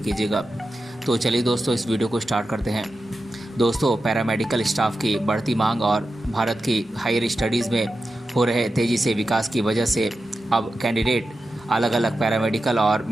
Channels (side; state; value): both; normal; correlation 0.91